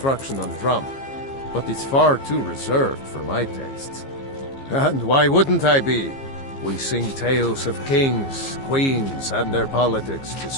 on drum, but it's far too reserved for my tastes. And why wouldn't I be? We sing tales of kings, queens, and their politics, 'tis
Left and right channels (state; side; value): late; right; 15 ms